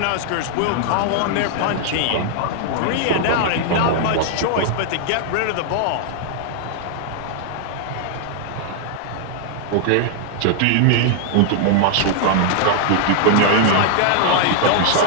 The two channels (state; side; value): different; both; correlation -0.01